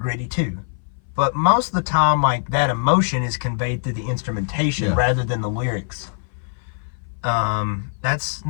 too, but most of the time, like, that emotion is conveyed through the instrumentation rather than the lyrics. That's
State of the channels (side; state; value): right; silent; 59 dB below the other